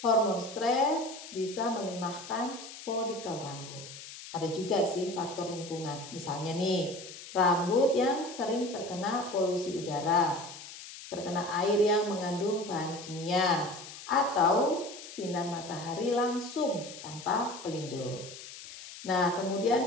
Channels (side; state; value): left; noise; hiss, 14 dB below the sound